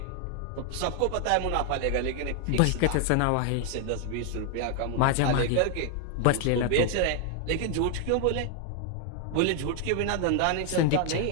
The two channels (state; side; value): different; both; correlation 0.00